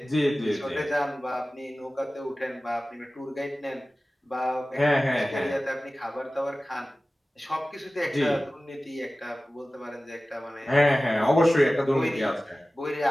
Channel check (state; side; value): normal; both; correlation 0.96